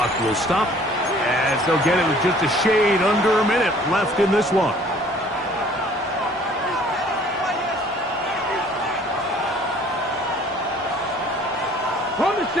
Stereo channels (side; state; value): both; normal; correlation 0.54